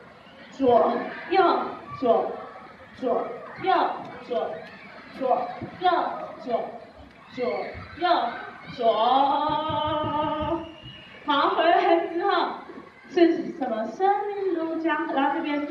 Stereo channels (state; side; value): identical; both; correlation 1.00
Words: 左右左，左右左，左右左，左右左。好，回来之后是什么？生命如江河，然后这边